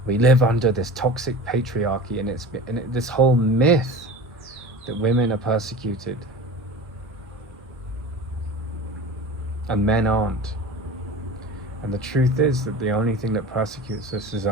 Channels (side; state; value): both; normal; correlation 0.35